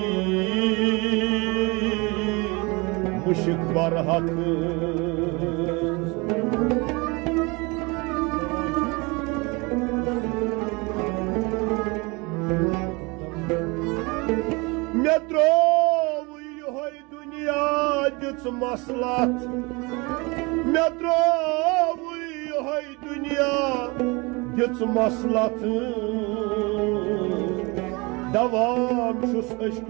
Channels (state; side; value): quieter; left; 26.9 dB